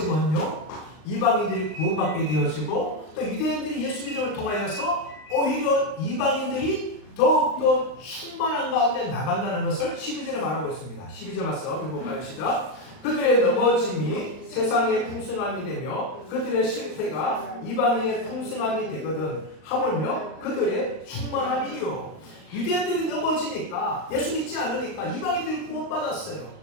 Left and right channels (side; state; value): right; late; 39 ms